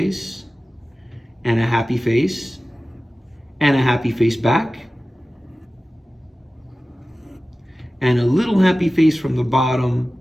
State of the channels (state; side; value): normal; both; correlation 0.96